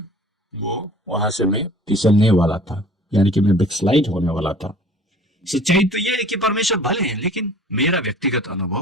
वो वहां से मैं फिसलने वाला था, यानी कि मैं बैकस्लाइड होने वाला था। सच्चाई तो यह है कि परमेश्वर भले हैं, लेकिन मेरा व्यक्तिगत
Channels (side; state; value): both; normal; correlation 0.48